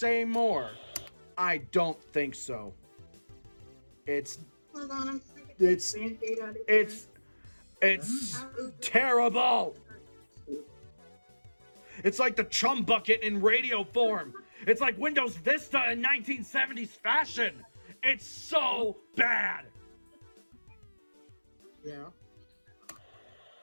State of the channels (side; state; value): both; inverted; correlation -1.00